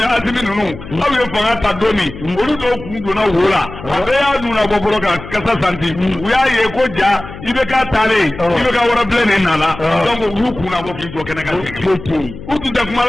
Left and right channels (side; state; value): left; noise; hum, 14 dB below the sound